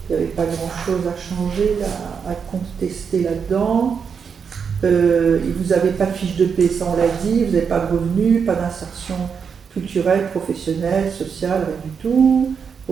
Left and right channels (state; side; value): quieter; left; 6.4 dB